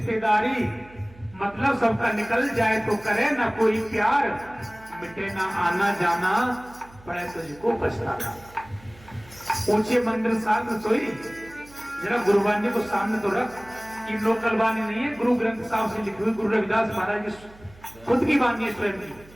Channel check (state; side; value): noise; right; hum, 23 dB below the sound